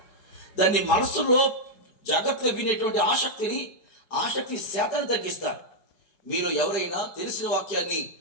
దాన్ని మనస్సులో జాగ్రత్తగా వినేటువంటి ఆసక్తి శాతాన్ని తగ్గిస్తారు. మీరు ఎవరైనా తెలిసిన వాక్యాన్ని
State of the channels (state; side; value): late; right; 5.4 ms